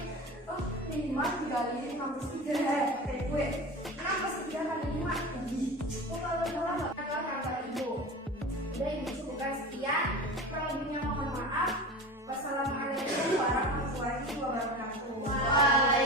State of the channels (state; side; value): normal; both; correlation 0.31